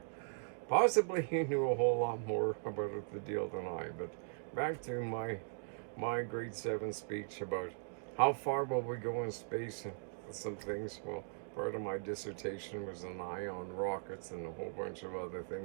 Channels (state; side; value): silent; left; digital silence